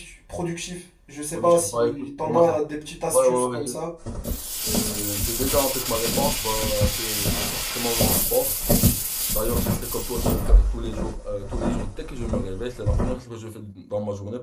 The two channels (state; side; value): identical; both; correlation 1.00